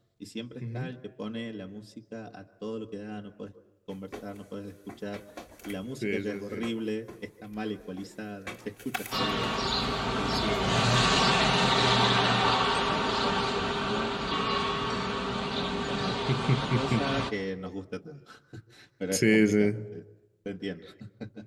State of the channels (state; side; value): identical; both; correlation 1.00